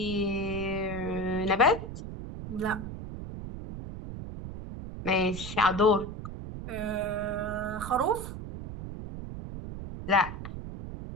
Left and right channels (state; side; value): noise; right; rumble, 9 dB below the sound